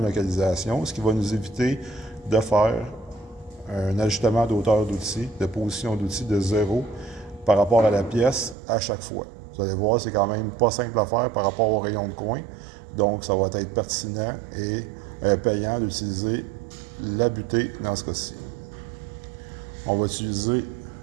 localisation, ce qui va nous éviter de faire un ajustement d'auteur d'outil, de position d'outil de 0 par rapport à la pièce à chaque fois. Vous allez voir, c'est quand même pas simple à faire par rapport aux rayons de coin. Donc, ça va être pertinent et payant d'utiliser la butée dans ce cas-ci. On va utiliser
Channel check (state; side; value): drops out; left; at 8.6 s